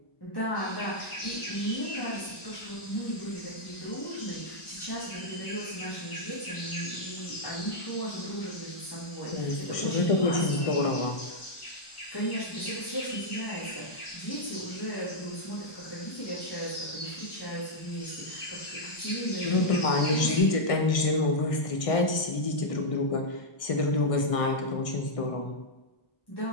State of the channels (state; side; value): late; right; 1.6 ms